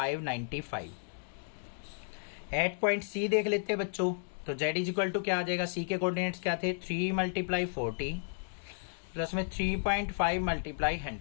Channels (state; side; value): silent; right; digital silence